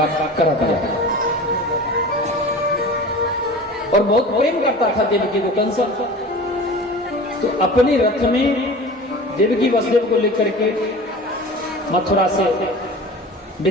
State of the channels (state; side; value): normal; both; correlation 0.37